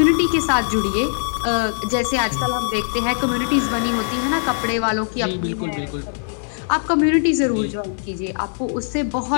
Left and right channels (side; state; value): right; silent; digital silence